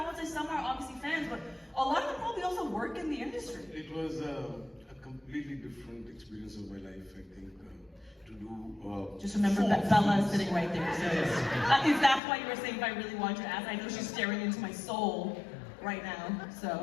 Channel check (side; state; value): right; drops out; at 12.2 s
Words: won't say some are obviously fans, but a lot of them probably also work in the industry. It was a completely different experience of my life, I think. To do just remember that Bella is sitting right there. So if that's why you were saying if I really want you to ask, I know she's staring into my soul right now.